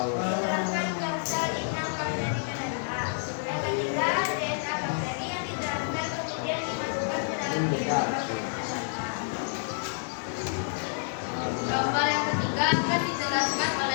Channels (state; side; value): silent; right; digital silence